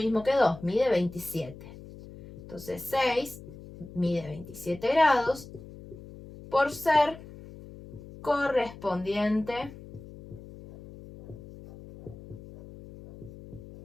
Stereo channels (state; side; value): noise; left; hum, 16 dB below the sound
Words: que 2, mide 27. Entonces 6 mide 27 grados por ser correspondiente